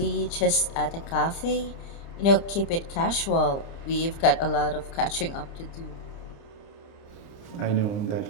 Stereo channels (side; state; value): right; late; 30 ms